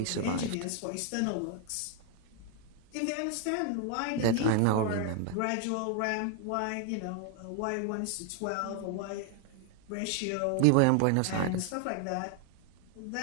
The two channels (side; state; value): both; different; correlation 0.00